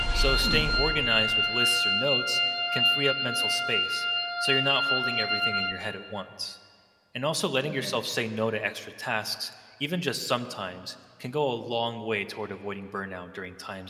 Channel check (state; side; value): identical; both; correlation 1.00